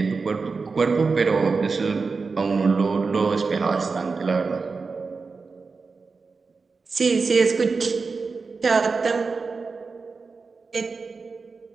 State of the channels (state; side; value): quieter; left; 4.5 dB